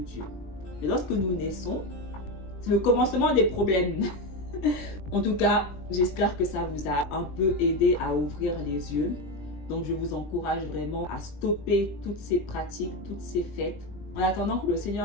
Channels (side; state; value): right; late; 20 ms